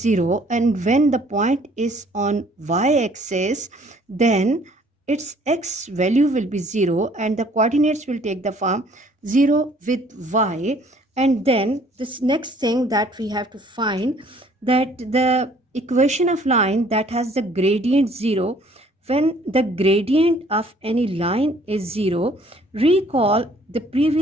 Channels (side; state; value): both; normal; correlation 0.58